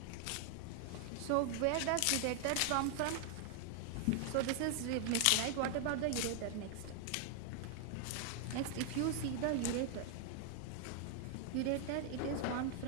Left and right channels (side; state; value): both; different; correlation 0.00